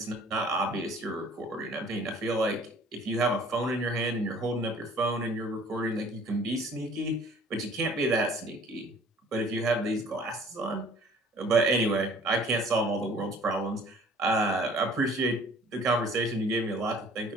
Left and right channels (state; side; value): normal; both; correlation 0.53